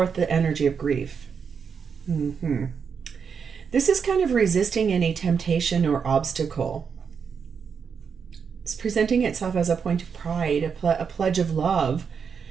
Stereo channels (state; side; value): quieter; left; 6.4 dB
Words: the energy of grief. This is kind of resisting any temptation or obstacle. It's presenting itself as a point of pride, a pledge of love.